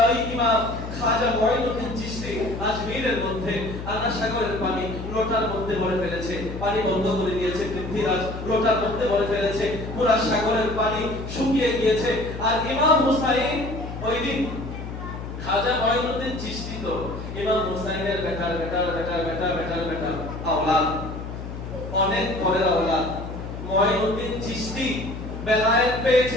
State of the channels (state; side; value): noise; left; hum, 8 dB below the sound